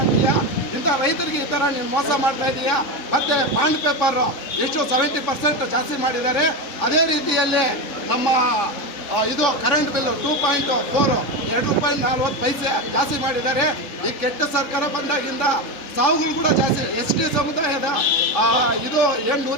ಆಗ್ತೀಯಾ, ಇಂಥ ರೈತರಿಗೆ ಈ ಥರ ನೀನು ಮೋಸ ಮಾಡ್ತಾ ಇದೀಯಾ. ಮತ್ತು ಬಾಂಡ್ ಪೇಪರು ಎಷ್ಟು 70% ಜಾಸ್ತಿ ಮಾಡಿದ್ದಾರೆ. ಅದೇ ರೀತಿಯಲ್ಲಿ ನಮ್ಮ ಇದು ಕರೆಂಟ್ ಬಿಲ್ 2.4 2.40 ಜಾಸ್ತಿ ಮಾಡಿದ್ದಾರೆ. ಈ ಕೆಟ್ಟ ಸರ್ಕಾರ ಬಂದಾಗಿಂದ ಸಾವುಗಳು ಕೂಡ ಜಾಸ್ತಿ. ST ಸಮುದಾಯದ ಇದು ಏನು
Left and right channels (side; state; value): right; late; 3.5 ms